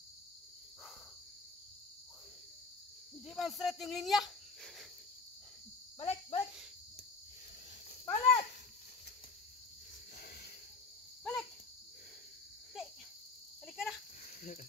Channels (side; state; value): right; quieter; 4.0 dB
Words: Hindi man straight yung linya. Balik, balik. Balik! Balik! Di. Balik ka na.